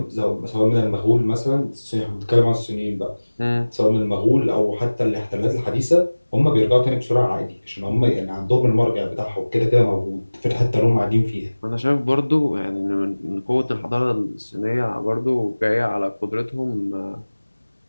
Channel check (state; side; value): inverted; both; correlation -1.00